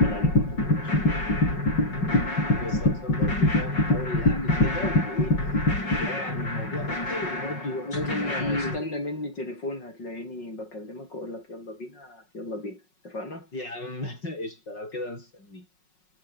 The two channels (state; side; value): late; right; 5.4 ms